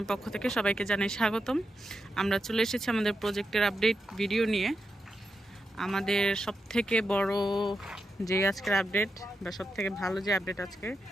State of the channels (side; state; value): both; normal; correlation 0.86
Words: পক্ষ থেকে সবাইকে জানাই স্বাগতম। আমরা চলে এসেছি আমাদের প্রজেক্টের আপডেট ভিডিও নিয়ে। আমাদের সবথেকে বড় যে আজকের আপডেট বা সবথেকে ভালো যে আপডেট আজকে,